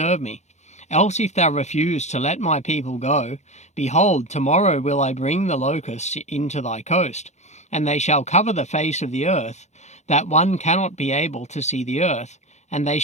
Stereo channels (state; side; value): late; right; 0.33 ms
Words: me. Else if thou refuse to let my people go, behold, tomorrow will I bring the locusts into thy coast, and they shall cover the face of the earth, that one cannot be able to see the earth, and they